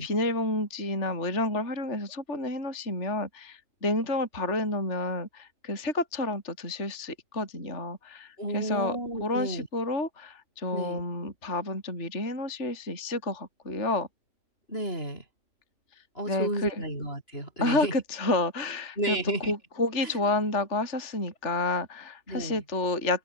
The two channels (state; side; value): late; right; 2.9 ms